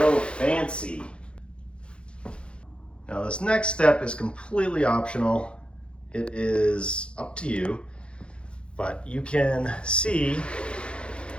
fancy. Now this next step is completely optional. It is up to you, but you can see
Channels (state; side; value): late; right; 0.057 ms